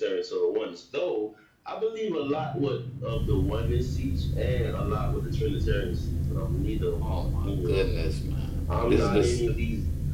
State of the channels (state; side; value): identical; both; correlation 1.00